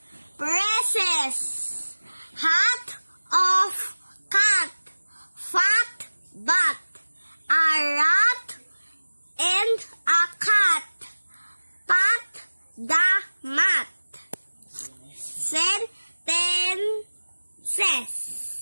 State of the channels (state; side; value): inverted; both; correlation -1.00